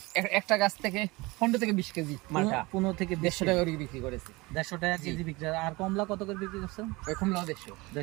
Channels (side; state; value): left; quieter; 23.1 dB